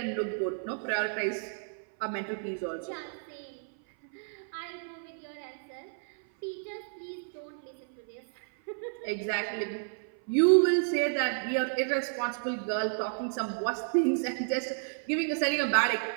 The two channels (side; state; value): left; silent; 57 dB below the other